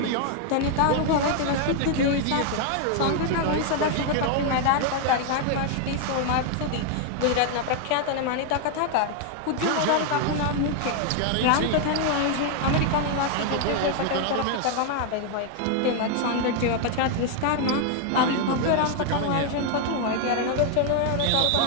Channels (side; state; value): both; different; correlation 0.00